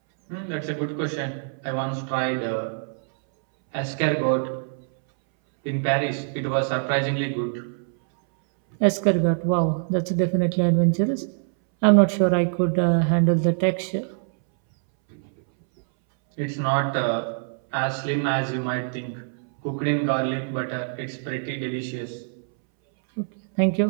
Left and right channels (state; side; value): silent; left; 62 dB below the other